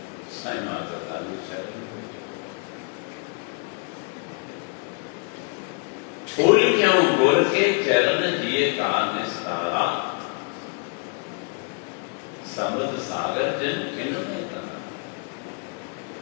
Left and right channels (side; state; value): right; quieter; 38.4 dB